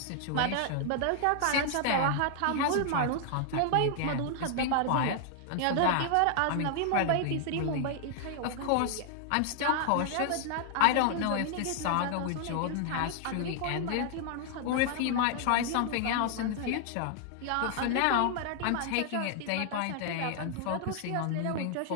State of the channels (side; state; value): both; different; correlation 0.00